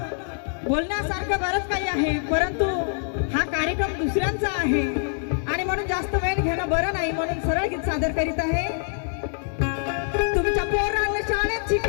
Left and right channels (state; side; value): silent; right; 62 dB below the other